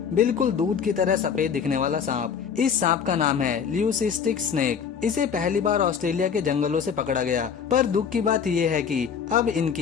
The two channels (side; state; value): right; quieter; 7.0 dB